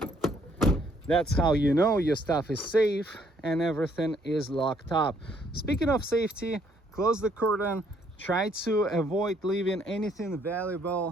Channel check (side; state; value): both; normal; correlation 0.67